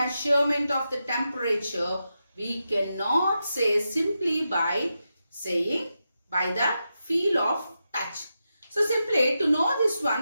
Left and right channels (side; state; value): both; inverted; correlation -0.88